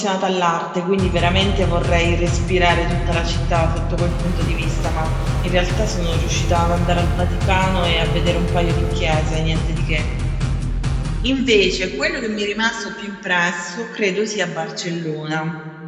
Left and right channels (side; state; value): both; identical; correlation 1.00